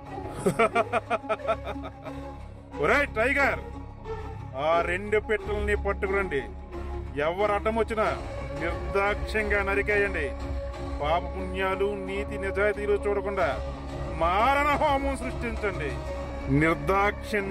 ఒరేయ్ టైగర్, ఆ 2 పెట్టెల్ని పట్టుకురండి. ఎవరు అడ్డం వచ్చినా నిర్దాక్ష్యంగా నరికేయండి. పాప పుణ్యాలు నీతి నిజాయితీలు చూడకుండా మారణ హోమం సృష్టించండి.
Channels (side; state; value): both; identical; correlation 1.00